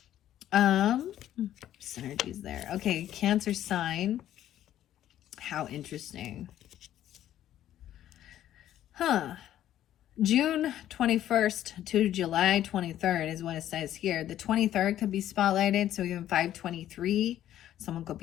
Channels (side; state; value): right; quieter; 12.0 dB